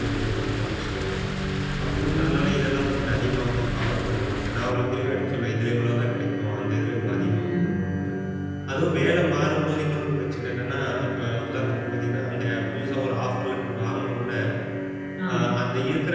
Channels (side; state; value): both; identical; correlation 1.00